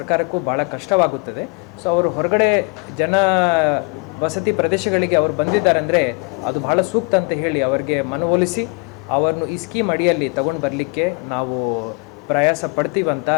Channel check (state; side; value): quieter; right; 33.6 dB